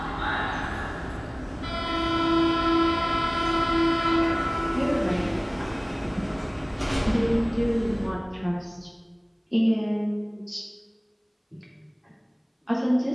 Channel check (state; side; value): identical; both; correlation 1.00